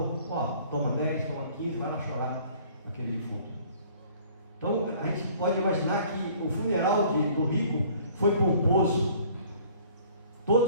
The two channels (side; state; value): both; inverted; correlation -0.54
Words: toma 10, toma 15, vai lá chorar naquele defunto. Então a gente pode imaginar que o funeral do rico foi pomposo.